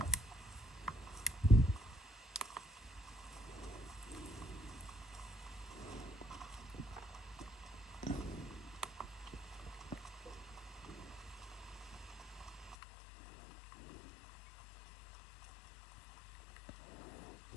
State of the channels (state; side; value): drops out; right; at 12.8 s